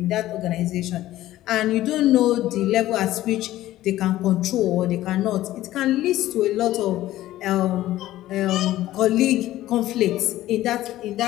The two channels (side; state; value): right; quieter; 14.9 dB